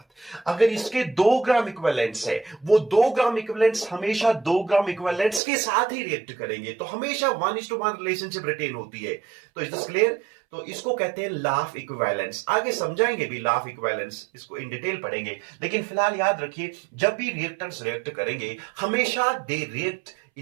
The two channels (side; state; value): left; drops out; at 5.4 s